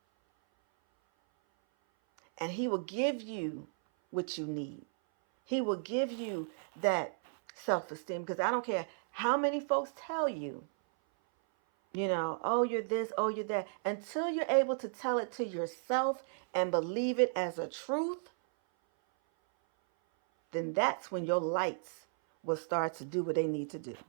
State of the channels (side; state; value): left; silent; 55 dB below the other